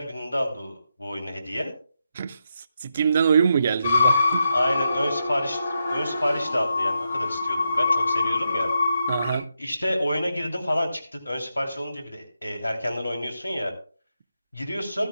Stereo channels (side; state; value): both; inverted; correlation -0.85